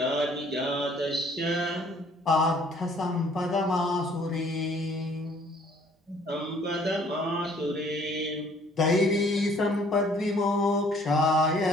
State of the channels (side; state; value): both; normal; correlation 0.59